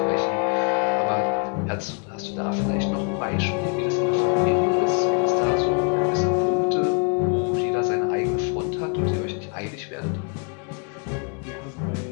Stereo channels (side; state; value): right; quieter; 40.0 dB